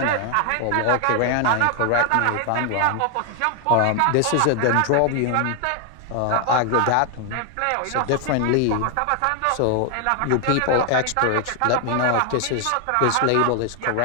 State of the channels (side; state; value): both; different; correlation 0.00